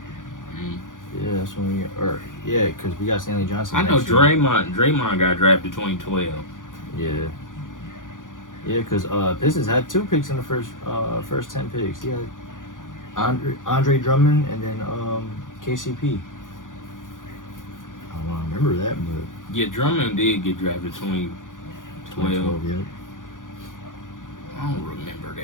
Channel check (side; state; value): right; late; 0.88 ms